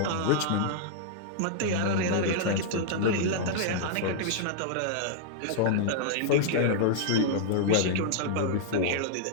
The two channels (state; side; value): different; both; correlation -0.01